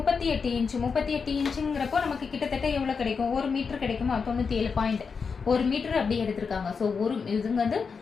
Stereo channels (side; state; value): right; quieter; 5.5 dB